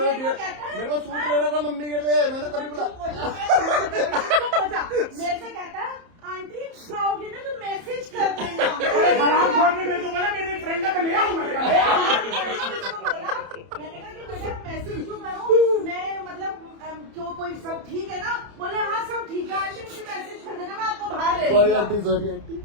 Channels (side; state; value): left; late; 30 ms